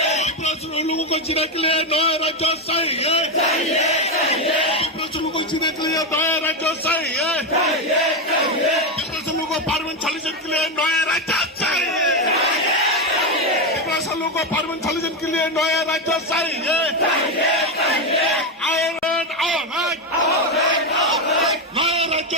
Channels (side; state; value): both; normal; correlation 0.10